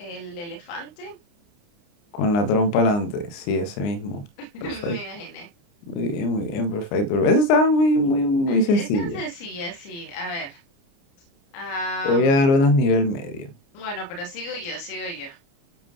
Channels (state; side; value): late; right; 29 ms